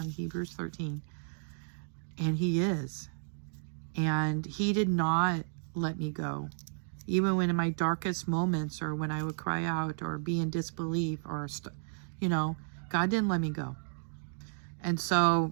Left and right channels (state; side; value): silent; left; digital silence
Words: Hebrews 13. And he is. And he did not let me go. Even when in my darkest moments, or when I would cry out or be in disbelief, or, God didn't let me go. And